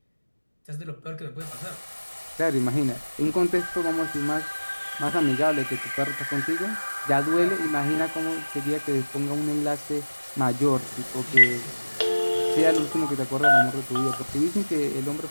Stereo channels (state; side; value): inverted; both; correlation -1.00